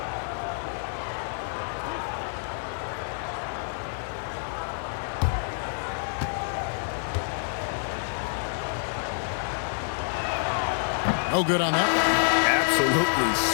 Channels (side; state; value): right; silent; digital silence